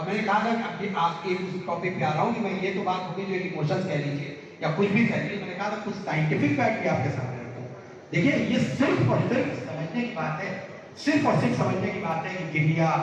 میں نے کہا تھا کہ آپ کے اس ٹاپک پہ آ رہا ہوں کہ میں یہ تو بات ہوگی جو ایموشنز کہہ لیجیے یا کچھ بھی کہہ لیجیے، میں نے کہا تھا کچھ سائنٹیفک فیکٹ بھی آپ کے سامنے رکھوں. دیکھیے یہ صرف اور صرف سمجھنے کی بات ہے، صرف اور صرف سمجھنے کی بات ہے کہ گریا،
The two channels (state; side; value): identical; both; correlation 1.00